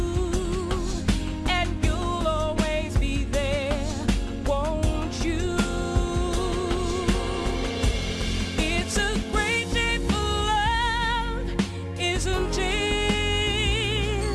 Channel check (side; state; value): both; identical; correlation 1.00